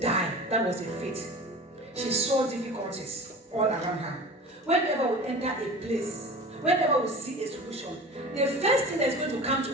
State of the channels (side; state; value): both; normal; correlation 0.37